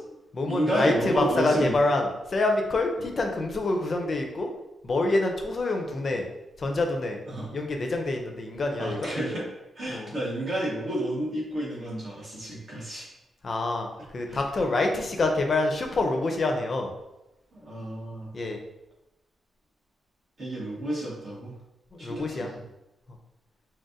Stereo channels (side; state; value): both; normal; correlation 0.84